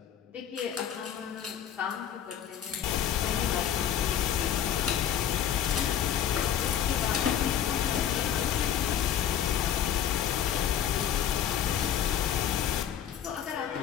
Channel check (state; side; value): quieter; right; 9.7 dB